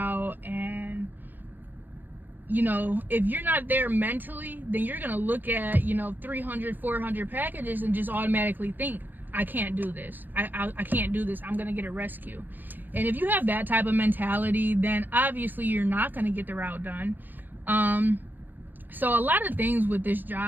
and you know, if you're not there mentally, then you're gonna look at, you know, 300, 400 packages and just automatically think, I can't do this. I can't do this. I'm gonna get a rescue. And if you have that type of mentality, then obviously you're not gonna get the route done. So a lot of things with this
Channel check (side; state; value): left; late; 0.091 ms